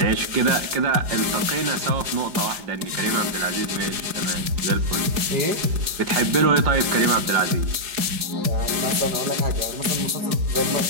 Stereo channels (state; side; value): late; left; 5.0 ms